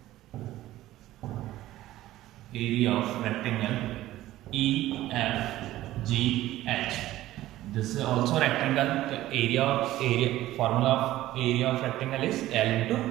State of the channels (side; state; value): left; quieter; 15.2 dB